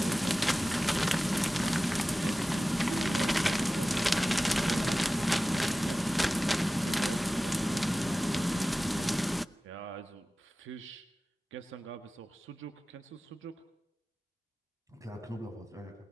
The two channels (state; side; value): normal; both; correlation 0.97